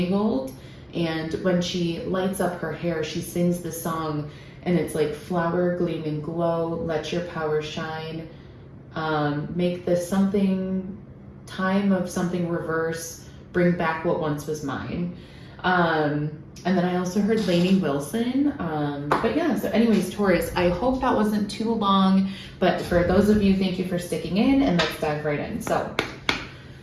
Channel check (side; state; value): both; identical; correlation 1.00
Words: And when she lights up her hair, she sings the song, and it's flower, gleam, and glow, let your power shine, make the time of something reverse, bring back what once was mine. And then I also heard Lainey Wilson. But yeah, so anyways, Taurus, I hope that wasn't too long, but for those of you, thank you for sticking in, and let's dive right in. So,